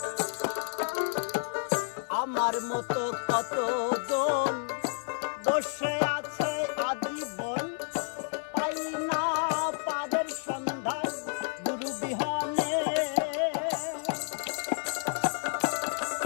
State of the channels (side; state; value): right; silent; 58 dB below the other